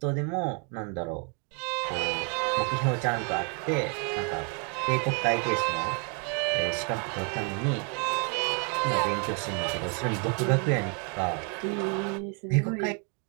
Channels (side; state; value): left; quieter; 37.0 dB